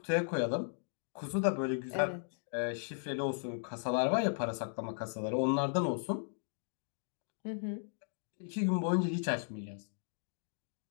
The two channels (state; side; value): silent; right; digital silence